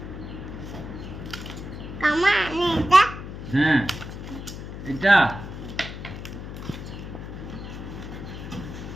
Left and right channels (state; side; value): noise; left; hum, 9 dB below the sound